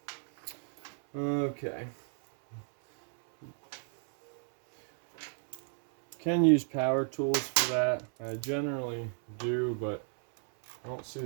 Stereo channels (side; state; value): left; silent; 56 dB below the other